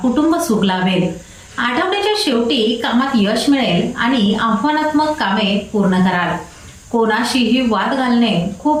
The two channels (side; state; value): both; identical; correlation 1.00